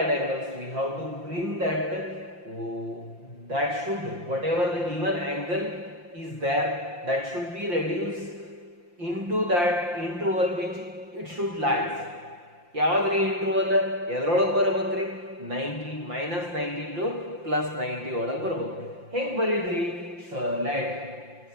angles we have to bring that that should whatever the given angle is there that should be reduced into that interval which it should lies. ಯಾವಾದ್ರಿ interval ಎದರೊಳಗೆ ಬರಬೇಕ್ರಿ 90 minus 90 to plus 90 ಒಳಗೆ ಬರಬೇಕು. ಹೆಂಗೆ ಬರೀದ್ರಿ, so let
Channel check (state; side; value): late; left; 5.8 ms